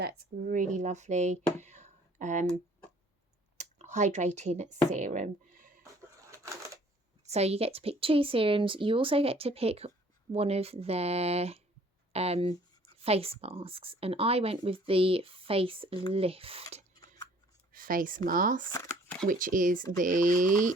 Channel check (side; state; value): both; normal; correlation 0.57